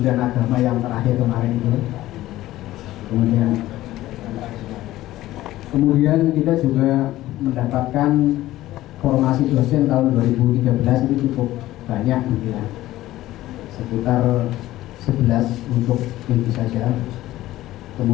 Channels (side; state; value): right; quieter; 15.6 dB